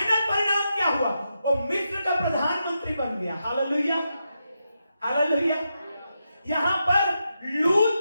परिणाम क्या हुआ? वो मिस्र का प्रधानमंत्री बन गया। Hallelujah, hallelujah. यहां पर लूत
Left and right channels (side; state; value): both; inverted; correlation -0.86